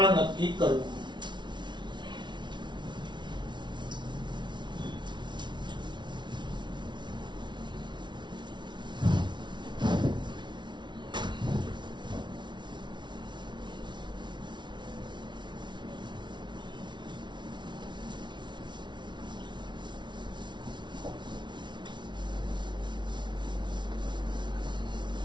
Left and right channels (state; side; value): late; left; 0.22 ms